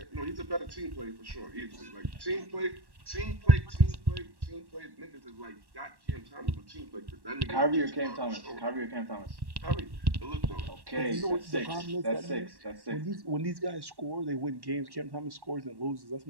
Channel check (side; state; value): left; late; 1.1 ms